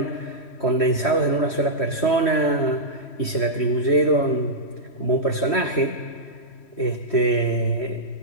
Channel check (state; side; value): late; right; 3.1 ms